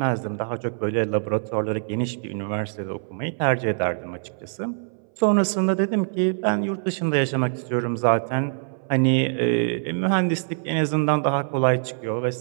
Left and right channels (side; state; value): left; silent; 63 dB below the other